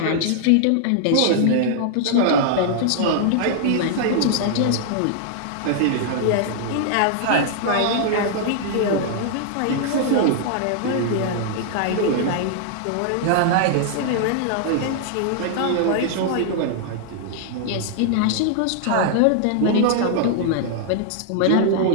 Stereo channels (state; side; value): different; both; correlation -0.01